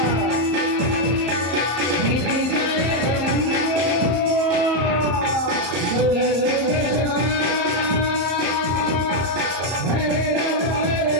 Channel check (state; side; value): late; left; 34 ms